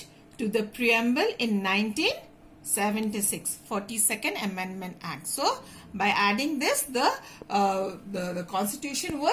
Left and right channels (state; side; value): identical; both; correlation 1.00